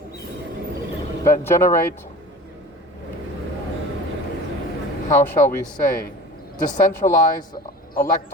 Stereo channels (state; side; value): normal; both; correlation 0.38